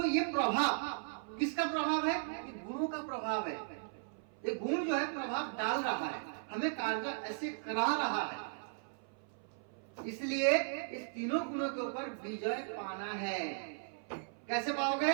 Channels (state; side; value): silent; left; 53 dB below the other